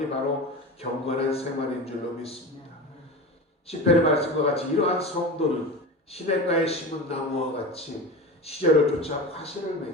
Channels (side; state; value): both; normal; correlation 0.28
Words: 바로 경건한 생활인 줄로 믿습니다. 시편의 말씀과 같이 이러한 성도는 시냇가에 심은 나무와 같이 시절을 쫓아 화실을